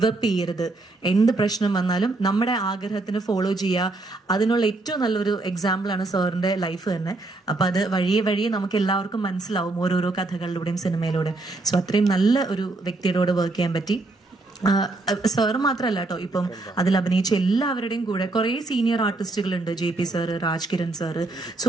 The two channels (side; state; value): left; quieter; 3.1 dB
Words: അപ്പ് ചെയ്യരുത്. എന്ത് പ്രശ്നം വന്നാലും നമ്മുടെ ആഗ്രഹത്തിന് ഫോളോ ചെയ്യുക. അതിനുള്ള ഏറ്റവും നല്ലൊരു എക്സാമ്പിളാണ് സാറിന്റെ ലൈഫ് തന്നെ. അപ്പൊ അത് വഴിയെ നമുക്ക് എല്ലാവർക്കും മനസ്സിലാവും ഓരോരോ കഥകളിലൂടെയും സിനിമയിലൂടെയും. സോ അത്രയും നല്ല ഒരു വ്യക്തിയോട് വർക്ക് ചെയ്യാൻ പറ്റി. സാറ് മാത്രമല്ല കേട്ടോ, ഇപ്പം അതിൽ അഭിനയിച്ച എല്ലാവരുടെയും കൂടെ കുറെ സീനിയർ ആർട്ടിസ്റ്റുകളുണ്ട്. JP sir, Rajkiran sir. So